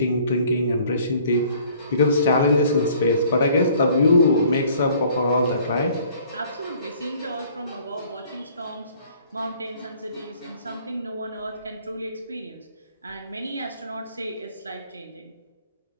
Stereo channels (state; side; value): inverted; both; correlation -0.56